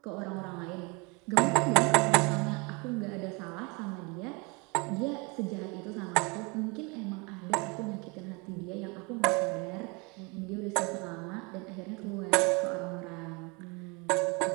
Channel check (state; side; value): quieter; left; 28.4 dB